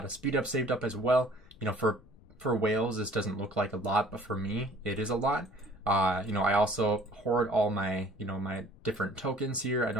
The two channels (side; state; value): left; noise; rumble, 25 dB below the sound